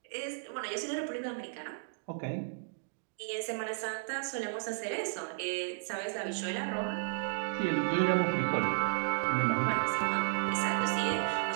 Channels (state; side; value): silent; left; digital silence